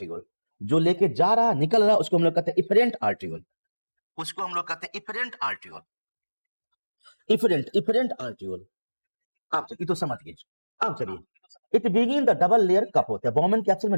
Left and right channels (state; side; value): inverted; both; correlation -1.00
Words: जो लेके जा रहा निकल रहा उसको हम लोग कहते हैं इफरेंट आर्टिकल, उसको हम लोग कहते हैं इफरेंट आर्टिकल, इफरेंट आर्टिकल। आप ये तो समझ गए। अब चलिए, it begin the double layer कब होता है, बॉमेन कैप्सूल